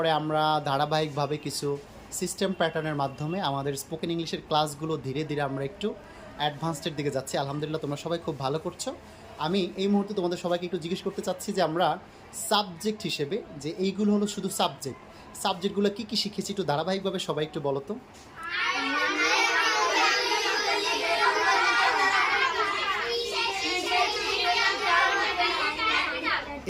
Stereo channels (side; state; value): both; identical; correlation 1.00